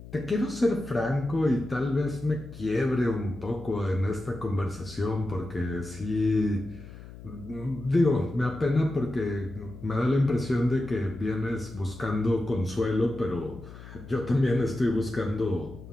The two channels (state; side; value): noise; left; hum, 16 dB below the sound